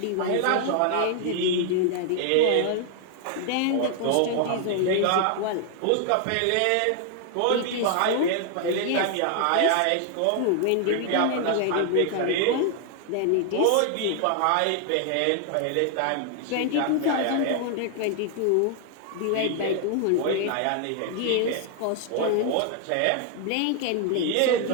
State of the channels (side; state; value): both; different; correlation 0.00